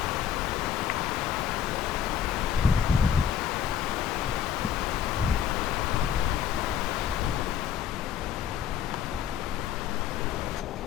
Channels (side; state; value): right; quieter; 8.8 dB